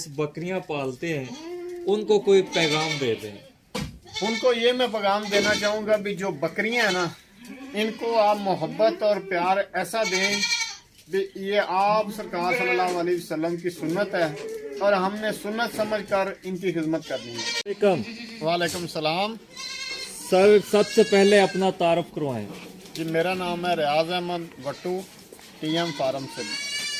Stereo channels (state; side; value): identical; both; correlation 1.00